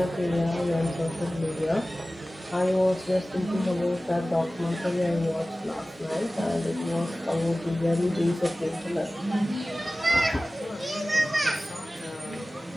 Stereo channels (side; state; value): both; normal; correlation 0.97